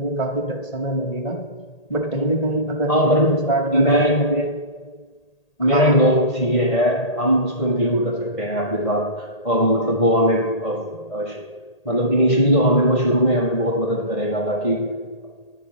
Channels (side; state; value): right; late; 1.8 ms